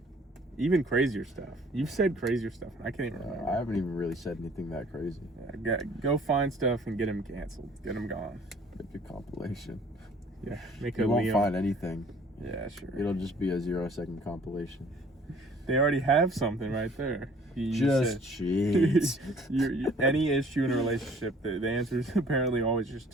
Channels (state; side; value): normal; both; correlation 0.55